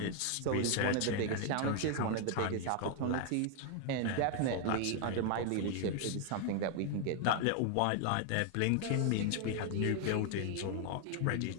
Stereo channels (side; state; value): both; different; correlation 0.00